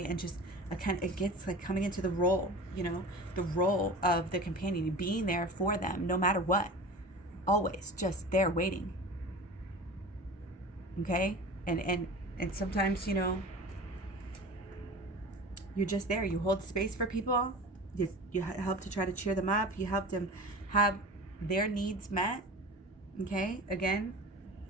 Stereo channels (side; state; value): both; normal; correlation 0.35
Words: And just it gets like coming into the role, the role of the companion, being there for them no matter what. Always just there waiting. Okay? And sometimes, you're just there. You hold space for people. You help to try to cheer them up. You help them have their needs met. Okay? Again,